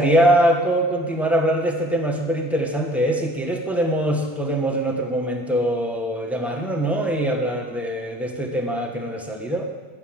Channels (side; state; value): both; normal; correlation 0.52